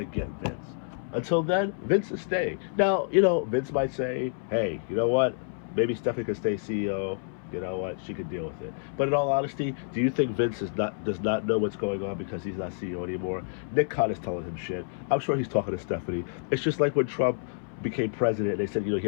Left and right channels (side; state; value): right; silent; 59 dB below the other